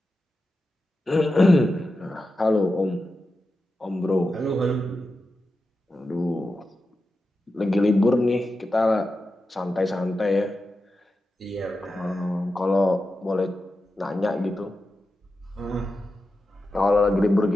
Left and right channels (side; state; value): both; normal; correlation 0.91